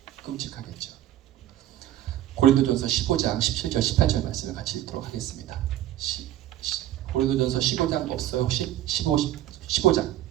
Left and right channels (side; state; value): left; quieter; 13.1 dB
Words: 끔찍하겠죠. 고린도전서 15장 17절 18절 말씀을 같이 읽도록 하겠습니다. 고린도전서 15장 없어요 혹시? 15장